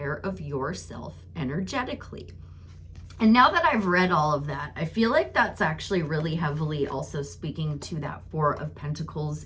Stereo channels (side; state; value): both; identical; correlation 1.00